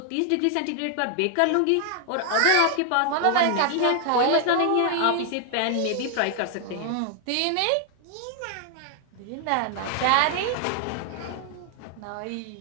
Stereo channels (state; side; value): different; both; correlation 0.00